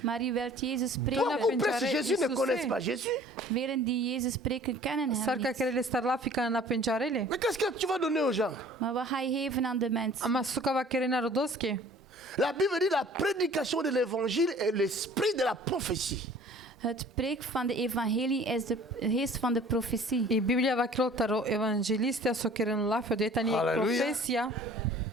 Maar je wilt Jezus Beaucoup spreken. prêchent Jésus ne connaissent pas Jésus. Velen die Jezus spreken kennen hem Sarka niet. kerele starlafika na penjarele. Mais qu'est-ce que tu vas donner aux gens? Maar wat ga je geven aan de mensen? Ama suka va kerena rodoske. La Bible dit la prédication de l'évangile est l'esprit de la prophétie. Het preek van de evangelie is de geest van de profetie. I Biblia va krotaro evangelistia so keren lafio de tani Halleluja. profesia.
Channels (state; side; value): normal; both; correlation 0.49